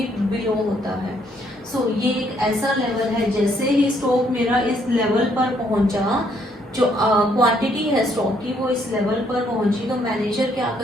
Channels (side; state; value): both; normal; correlation 0.70